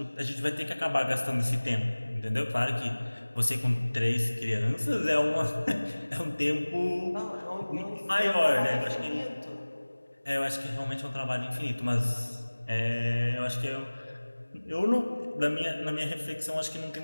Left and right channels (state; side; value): inverted; both; correlation -1.00